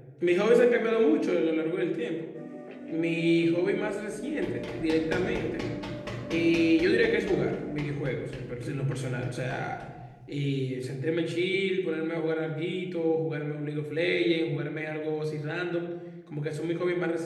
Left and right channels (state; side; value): identical; both; correlation 1.00